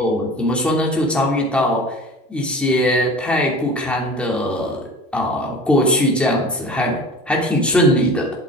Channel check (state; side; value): normal; both; correlation 0.39